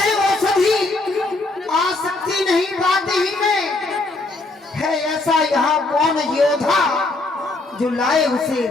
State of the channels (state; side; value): quieter; right; 3.1 dB